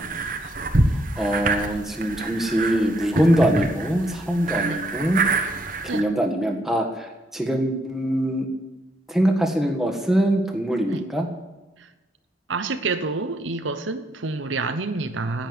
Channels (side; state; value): both; normal; correlation 0.74